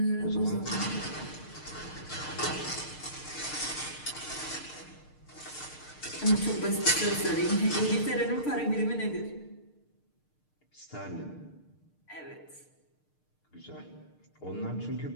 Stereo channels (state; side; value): late; right; 6.6 ms